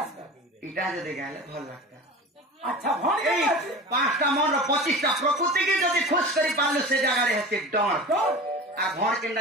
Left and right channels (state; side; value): normal; both; correlation 0.34